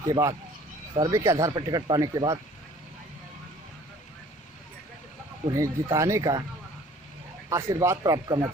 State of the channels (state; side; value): normal; both; correlation 0.53